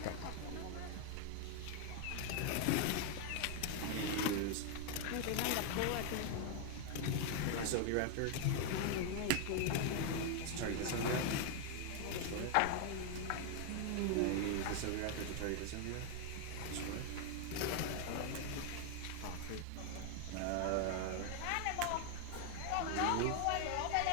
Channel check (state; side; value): different; both; correlation 0.01